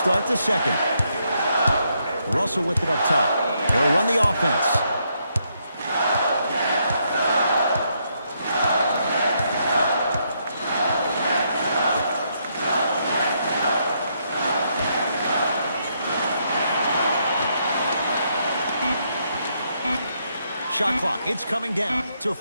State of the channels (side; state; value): both; inverted; correlation -0.76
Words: the second. Russell with it up top. He'll run the offense. Shot clock, it's coming down to